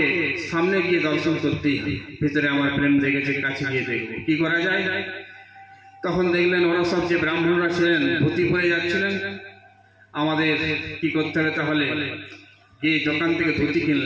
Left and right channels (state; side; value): identical; both; correlation 1.00